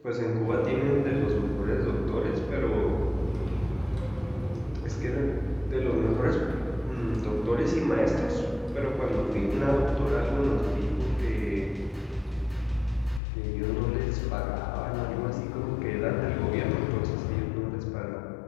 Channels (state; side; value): drops out; right; at 13.2 s